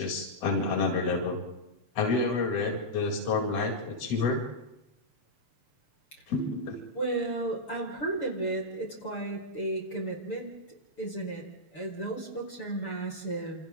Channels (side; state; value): right; late; 6.8 ms